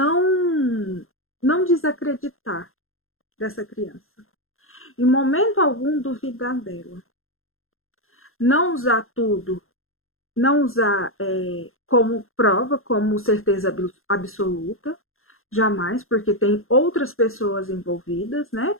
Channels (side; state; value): right; late; 0.61 ms